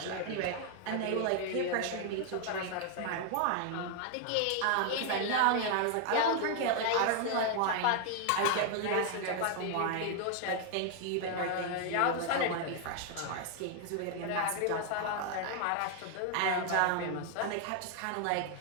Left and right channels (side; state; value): both; different; correlation 0.00